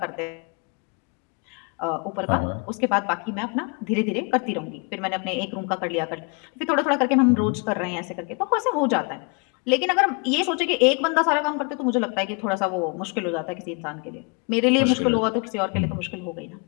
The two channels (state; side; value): quieter; right; 33.7 dB